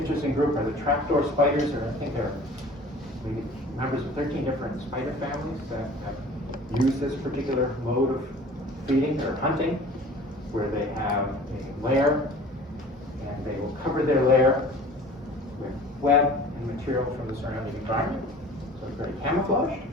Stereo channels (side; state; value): both; normal; correlation 0.45